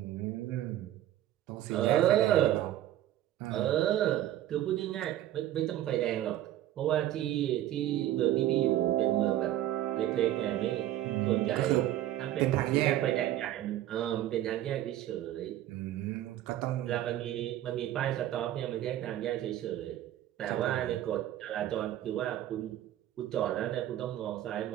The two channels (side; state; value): left; quieter; 13.0 dB